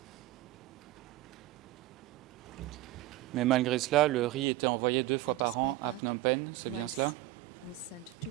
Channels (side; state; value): left; quieter; 16.1 dB